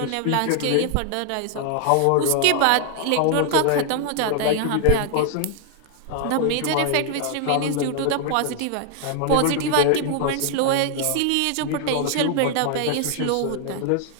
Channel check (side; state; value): both; different; correlation 0.00